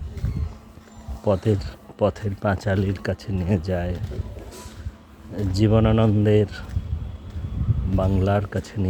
পথের পাঁচালীর কাছে নিয়ে যায়, জীবনানন্দের বাংলার কাছে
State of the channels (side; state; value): both; identical; correlation 1.00